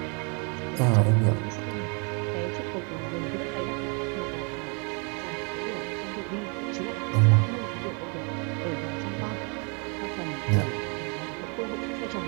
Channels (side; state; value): left; quieter; 34.6 dB